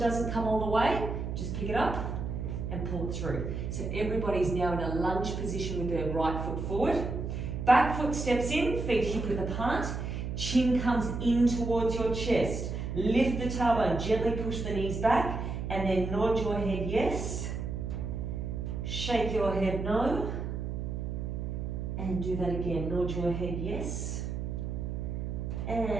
come all the way, just pick it up and pull it through. So everybody's now in a lunge position with their right foot forward. Back foot steps in, feet hip width apart. Chin comes in towards your chest. Lift the tailbone, gently push the knees back, and then nod your head yes. Shake your head no. And do that again. Nod your head yes.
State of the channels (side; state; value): right; noise; hum, 4 dB below the sound